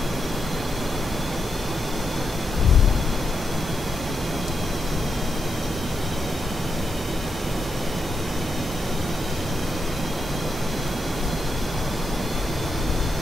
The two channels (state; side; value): normal; both; correlation 0.83